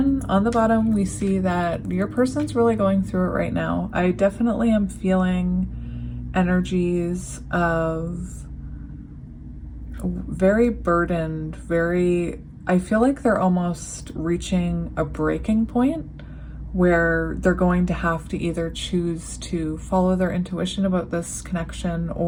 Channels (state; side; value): identical; both; correlation 1.00